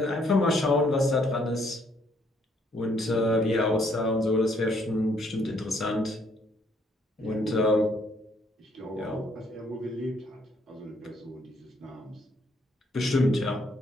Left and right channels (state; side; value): normal; both; correlation 0.68